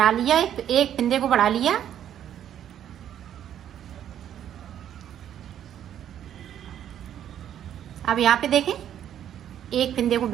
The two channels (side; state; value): left; quieter; 10.3 dB